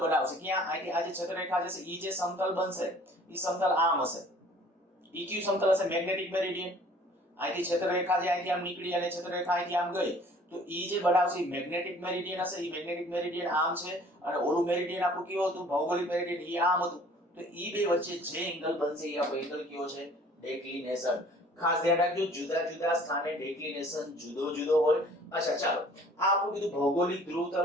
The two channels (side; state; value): both; normal; correlation 0.52